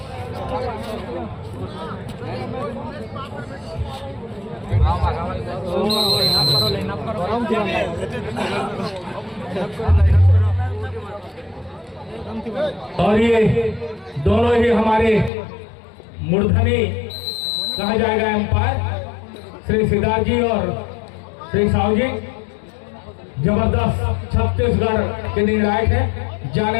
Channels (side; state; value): right; drops out; at 15.3 s